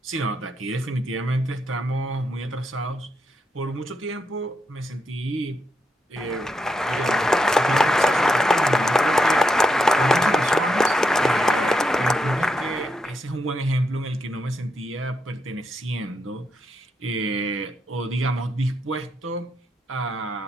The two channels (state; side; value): normal; both; correlation 0.82